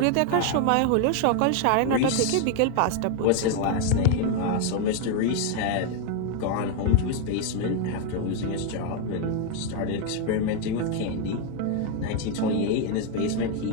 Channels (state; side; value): different; both; correlation 0.01